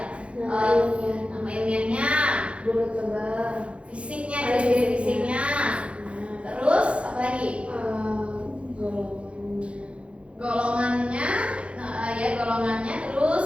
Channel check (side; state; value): left; late; 0.060 ms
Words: Nama ilmiahnya, fisiknya, ciri-ciri fisiknya. Terus apa lagi? Golongannya, golongannya.